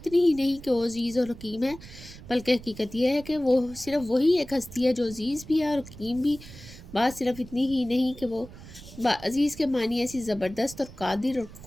ہی نہیں کہ وہ عزیز اور حکیم ہے، بلکہ حقیقت یہ ہے کہ وہ صرف وہی ایک ہستی ہے جو عزیز بھی ہے اور حکیم بھی۔ بات صرف اتنی ہی نہیں کہ وہ عزیز کے معنی ایسی زبردست اور قادر اور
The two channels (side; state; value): right; noise; rumble, 16 dB below the sound